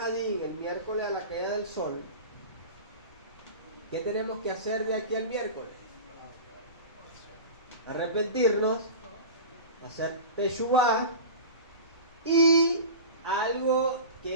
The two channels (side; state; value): both; inverted; correlation -0.32